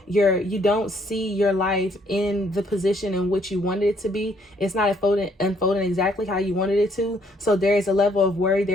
don't see your life in the position in which you wanted it to be. It's not unfolding exactly how you wanted it to. So there is a level of worry,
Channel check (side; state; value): both; normal; correlation 0.67